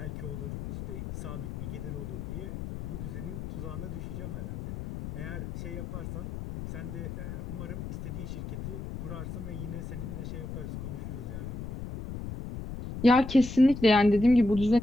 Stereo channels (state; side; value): noise; left; rumble, 7 dB below the sound